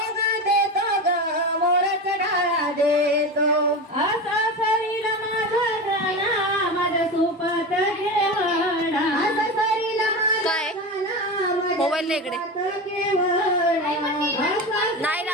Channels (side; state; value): both; normal; correlation 0.23